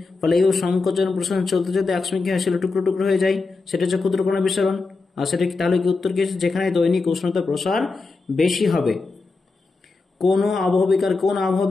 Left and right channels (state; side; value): quieter; right; 3.9 dB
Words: ফলে এই সংকোচন প্রসারণ চলতে চলতে একসময় কি হয়, শিলা টুকরো টুকরো হয়ে যায়, সেটা হচ্ছে ক্ষুদ্রকণা বিসরণ। আর সেটা তাহলে কি উত্তর কি? যেখানে দৈনিক উষ্ণতা প্রসার বেশি হবে। কোন